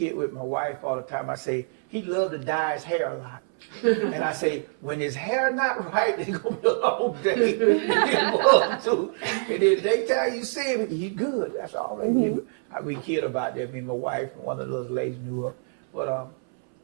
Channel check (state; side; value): silent; left; 60 dB below the other